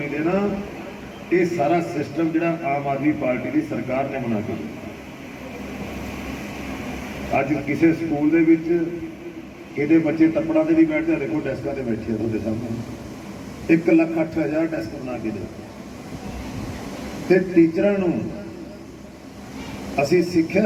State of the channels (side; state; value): both; identical; correlation 1.00